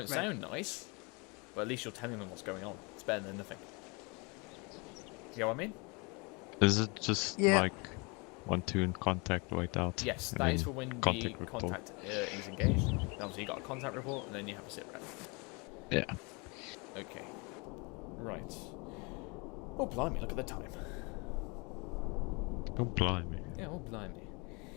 sound nice, but at least you're telling them what's going on. It's better than nothing. You know what I mean? Is it just like 1-2 in contact, wait out? Yes, that is for when the contact is engaged. Obviously, you got a contact report, and then you have a sit rep. Yeah. Okay. Right. Oh, blimey, look at the time. Oh, blimey. Yeah, oh, blimey.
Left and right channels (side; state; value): right; quieter; 29.7 dB